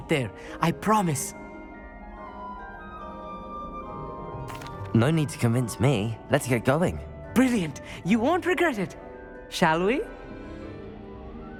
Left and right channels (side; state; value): both; identical; correlation 1.00